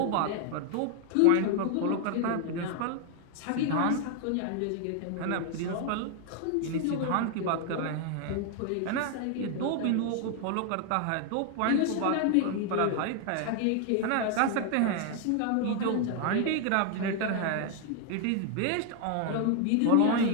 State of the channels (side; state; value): both; different; correlation 0.00